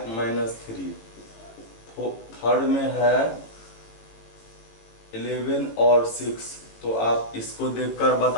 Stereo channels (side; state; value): right; late; 18 ms